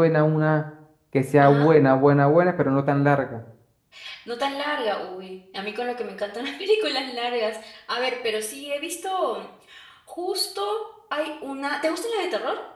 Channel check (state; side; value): identical; both; correlation 1.00